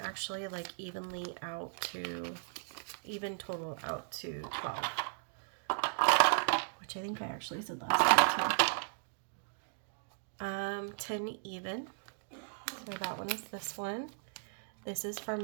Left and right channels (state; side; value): silent; left; digital silence